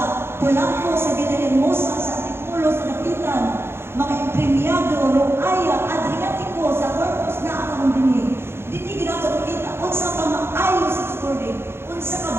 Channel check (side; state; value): left; late; 0.12 ms